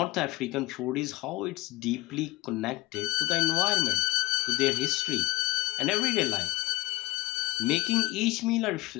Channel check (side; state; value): right; quieter; 19.4 dB